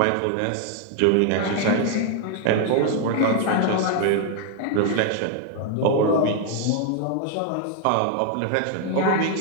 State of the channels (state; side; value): different; both; correlation 0.01